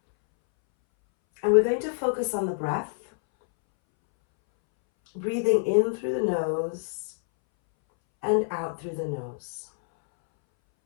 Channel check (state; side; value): silent; right; 61 dB below the other